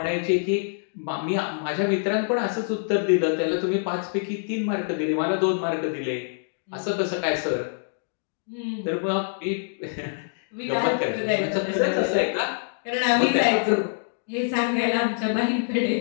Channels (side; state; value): right; silent; digital silence